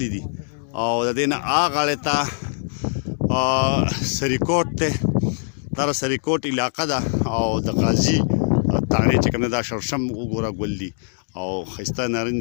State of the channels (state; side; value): silent; right; digital silence